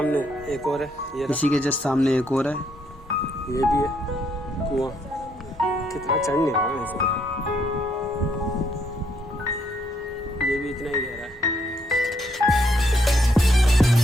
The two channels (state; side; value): normal; both; correlation 0.72